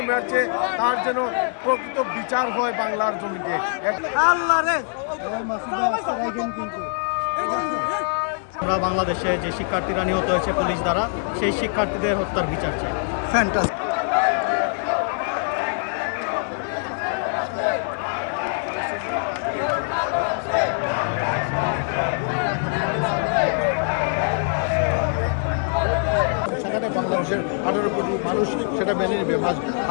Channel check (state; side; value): silent; right; 63 dB below the other